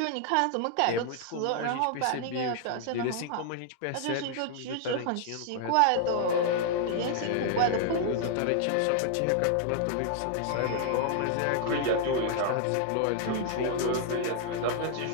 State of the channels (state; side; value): different; both; correlation -0.01